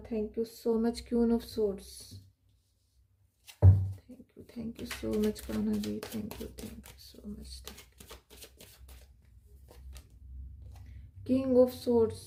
Thank you so much Queen of Swords. Thank you so much Kanha ji, thank you so much. King of Swords.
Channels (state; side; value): identical; both; correlation 1.00